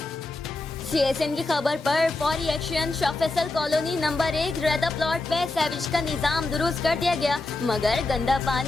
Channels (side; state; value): right; quieter; 3.1 dB